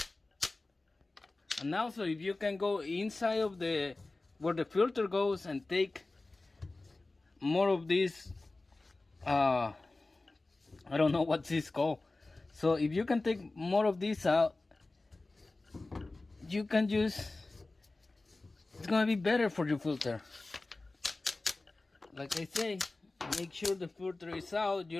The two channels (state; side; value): quieter; right; 3.2 dB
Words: And also, if you can go inside of the where the filter goes and take more of this, I don't know what this called. So if you can take more of this out, you can just, it's gonna be better for your filter. Like I say, make sure the filter is out. You